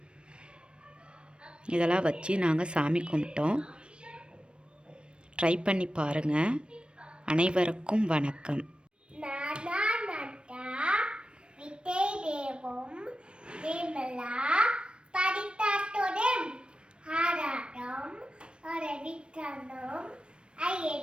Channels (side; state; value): left; late; 0.056 ms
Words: இதெல்லாம் வச்சு நாங்கள் சாமி கும்பிட்டோம். ட்ரை பண்ணி பாருங்கள். அனைவருக்கும் வணக்கம்.